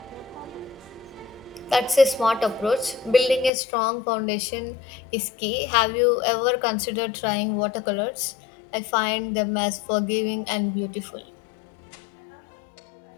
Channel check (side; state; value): right; drops out; at 3.5 s